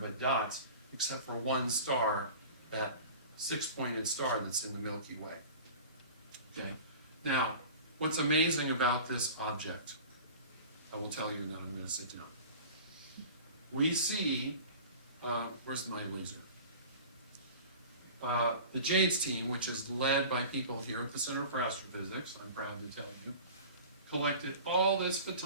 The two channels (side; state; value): both; inverted; correlation -0.39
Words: dots, except for one star, that 6-pointed star that's in the Milky Way. Okay. Now, what's amazing about this object, I will tell you, and then I'm going to sit down. We see, where's my laser? The JADES team, which is led by people here at the Center for Astrophysics, I'm proud to tell you, collected all this